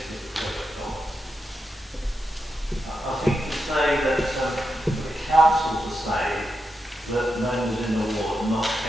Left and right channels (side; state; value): both; normal; correlation 0.86